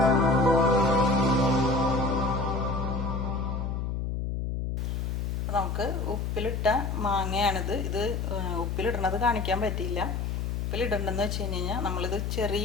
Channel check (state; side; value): noise; left; hum, 2 dB below the sound